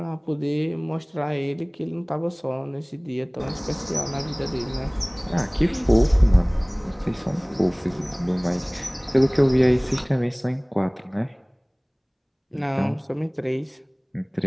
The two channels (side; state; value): both; identical; correlation 1.00